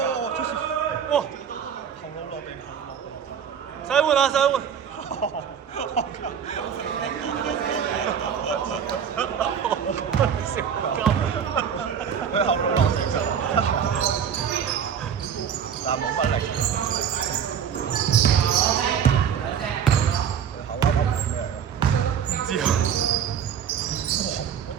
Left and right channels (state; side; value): quieter; left; 8.0 dB